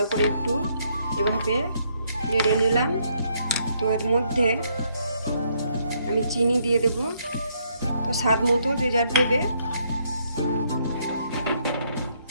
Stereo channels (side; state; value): both; inverted; correlation -0.72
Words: করে একটু এভাবে নেড়ে নিলাম। তো এর মধ্যে আমি চিনি দিয়ে দেব, তো স্বাদ মতো যে যার দেবে।